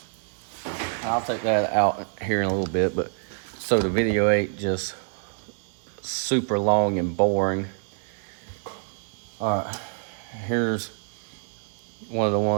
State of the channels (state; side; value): silent; left; 61 dB below the other